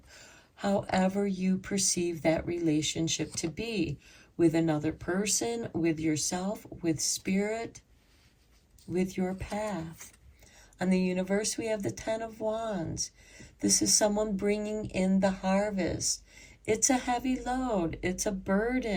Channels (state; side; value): identical; both; correlation 1.00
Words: however you perceive that relationship to be, with another person, with yourself, with spirit, with your path. On the universe, we have the Ten of Wands. This is someone bringing in the harvest. It's a heavy load. It's a